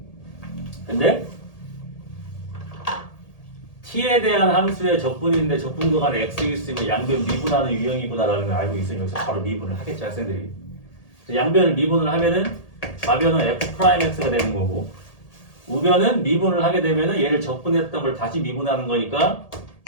근데 t에 대한 함수의 적분인데 적분 구간에 x 있으면 양변 미분하는 유형이구나라는 걸 알고 있으면 여기서 바로 미분을 하겠지, 학생들이. 양변을 미분을 하면은 좌변은 f'x가 되는 거고, 우변은 미분을 하게 되면은 얘를 적분했던 걸 다시 미분하는 거니까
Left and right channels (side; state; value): right; late; 1.8 ms